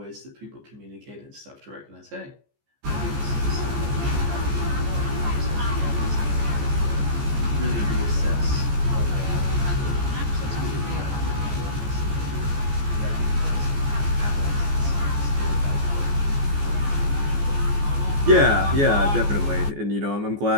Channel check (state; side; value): late; left; 14 ms